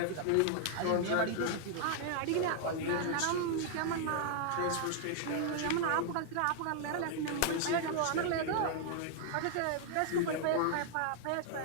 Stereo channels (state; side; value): different; both; correlation 0.00